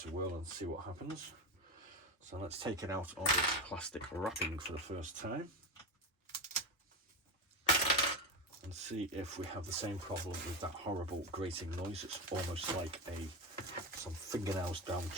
a whirl and see what happens. So let's take it out of its plastic wrapping for the first time. And see if we have the same problem with that horrible grating noise. It's almost like some fingernails down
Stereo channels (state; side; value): normal; both; correlation 0.17